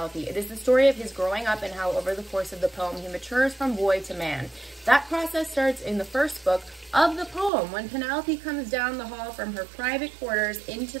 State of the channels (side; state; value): left; drops out; at 7.5 s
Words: It is the story of his growing up and how over the course of the poem he matures from boy to man. That process starts in the first book of the poem when Penelope comes down the hall from her private quarters into